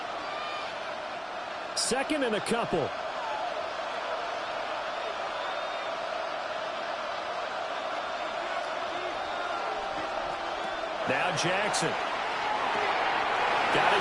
Second and a couple. Now Jackson. Got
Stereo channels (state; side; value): identical; both; correlation 1.00